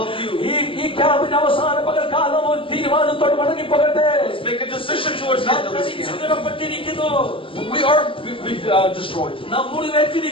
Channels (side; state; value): right; late; 0.25 ms